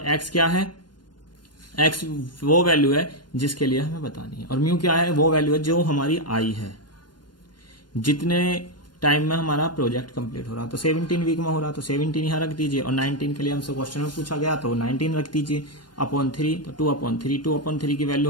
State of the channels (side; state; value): right; late; 0.71 ms